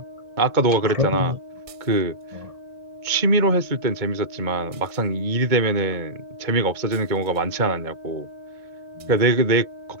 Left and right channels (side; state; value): left; late; 2.2 ms